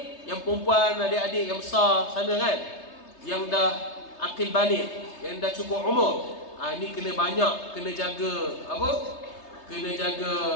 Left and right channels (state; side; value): late; right; 3.3 ms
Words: yang perempuan, adik-adik yang besar sana kan, yang dah akil balik, yang dah cukup umur, ni kena banyak, kena jaga apa? Kena jaga